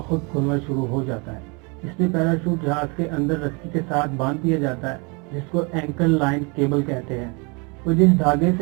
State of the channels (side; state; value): left; quieter; 31.2 dB